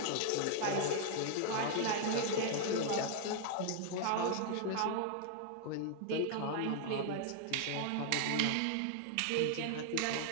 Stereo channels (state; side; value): different; both; correlation 0.00